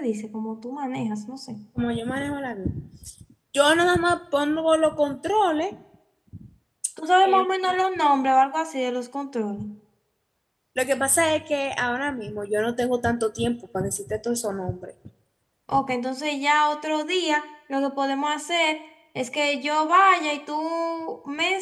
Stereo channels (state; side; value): identical; both; correlation 1.00